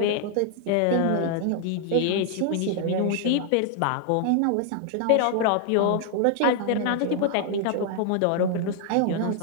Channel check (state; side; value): different; both; correlation 0.00